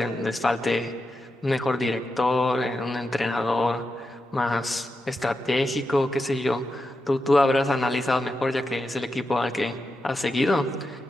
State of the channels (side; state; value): both; normal; correlation 0.88